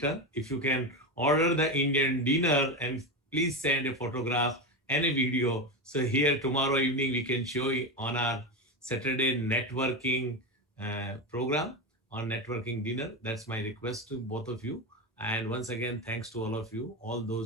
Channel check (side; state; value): both; normal; correlation 0.17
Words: If you can order the Indian dinner, and please send a photograph and a video. So here tomorrow evening, we can show you on our Saturday networking program, on networking dinner. That's my request to both of you. And once again, thanks to all of you, all